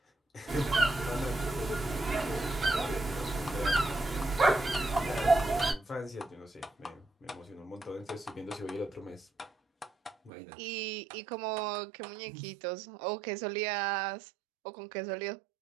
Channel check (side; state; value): left; drops out; at 10.3 s